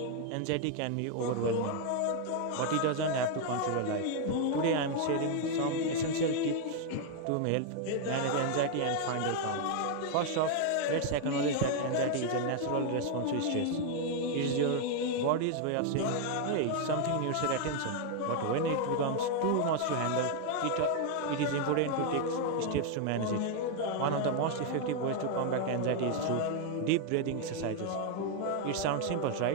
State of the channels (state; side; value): different; both; correlation 0.01